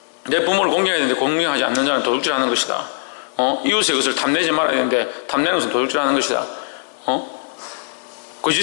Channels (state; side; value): silent; right; digital silence